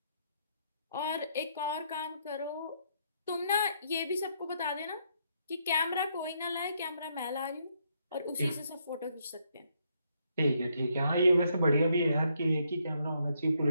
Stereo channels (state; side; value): inverted; both; correlation -0.74